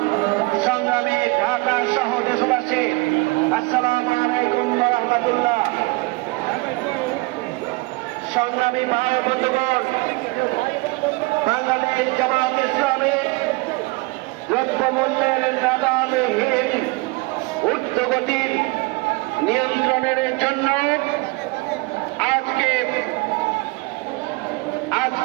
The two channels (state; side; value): quieter; left; 24.9 dB